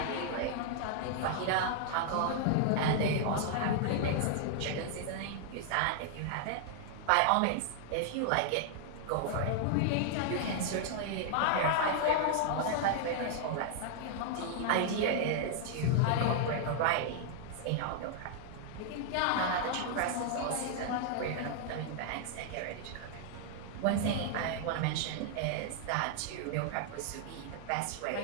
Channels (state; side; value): different; both; correlation 0.00